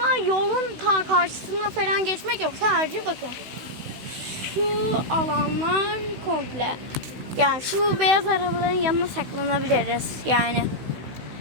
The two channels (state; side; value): late; left; 16 ms